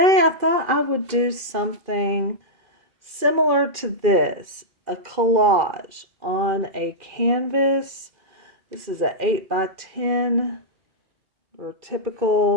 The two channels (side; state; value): left; late; 2.4 ms